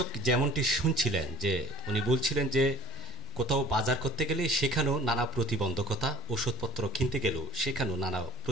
যেমনটি শুনছিলেন যে উনি বলছিলেন যে কোথাও বাজার করতে গেলে সেখানেও নানা প্রতিবন্ধকতা, ওষুধপত্র কিনতে গেলেও সেখানেও নানা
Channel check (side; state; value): both; normal; correlation 0.48